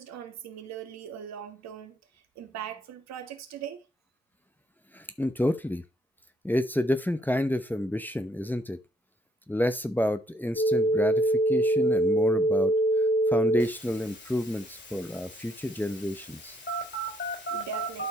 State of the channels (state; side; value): normal; both; correlation 0.69